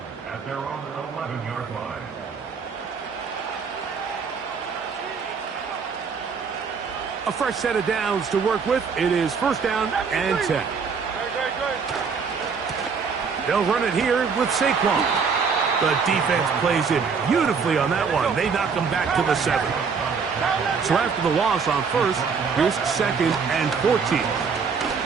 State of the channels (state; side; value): quieter; left; 5.7 dB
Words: at their own 11-yard line. A fresh set of downs to work with. It is first down and 10. They'll run it here with Saquon. The defense plays it beautifully on that one. They knock them back to the 7. So after the loss on first, here's second and 14.